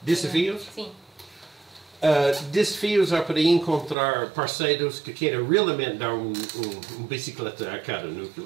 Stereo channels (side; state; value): left; drops out; at 4.0 s